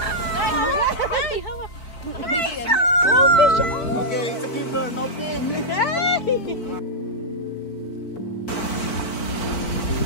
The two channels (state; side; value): late; right; 4.6 ms